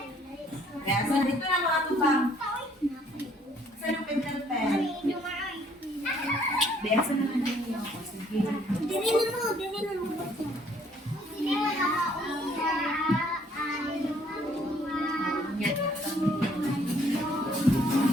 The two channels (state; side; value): normal; both; correlation 0.63